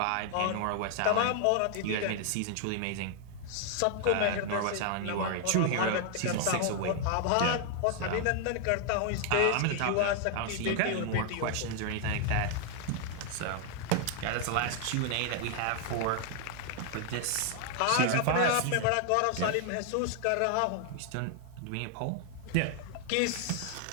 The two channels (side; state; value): both; different; correlation 0.00